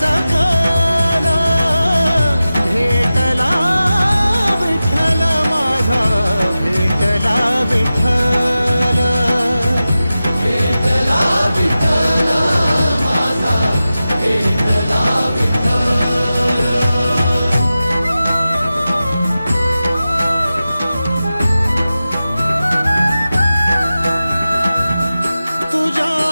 सकल. भेटला विठ्ठल माझा भेटला विठ्ठल, भेटला विठ्ठल माझा भेटला विठ्ठल.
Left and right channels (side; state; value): both; inverted; correlation -0.94